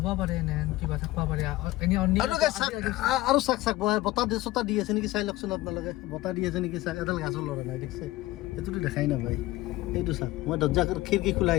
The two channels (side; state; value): right; quieter; 18.0 dB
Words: পাৰে এনে কিবা থাকিব পাৰে এনেই আৰু চাক চাক বতাহ দি চতাহ দি আছে নেকি চাই লওকচোন আপোনালোকে বতাহ দি আছে নেকি চাক এডাল গাছৰ লৰা নাই দেখিছে সেইটোতো দেখাই নাপায় এইটো চাক মই দৰ্জা খিৰিকী